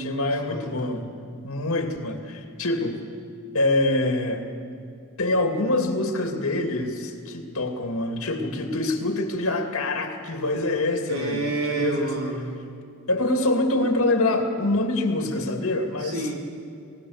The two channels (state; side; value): normal; both; correlation -0.02